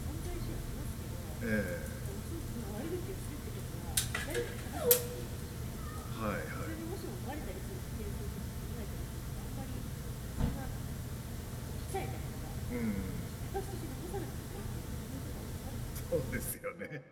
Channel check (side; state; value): both; identical; correlation 1.00